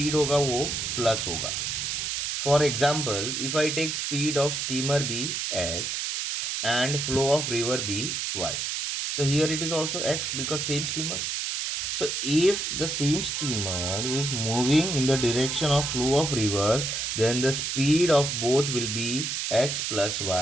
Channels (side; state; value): right; noise; hiss, 2 dB below the sound